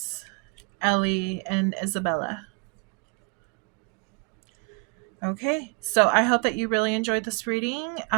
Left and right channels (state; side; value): quieter; left; 34.5 dB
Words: Ellie, and Isabella. Okay, so I hope that you really enjoyed this reading.